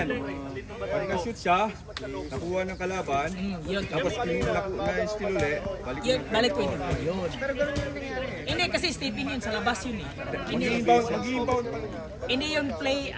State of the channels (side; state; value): both; identical; correlation 1.00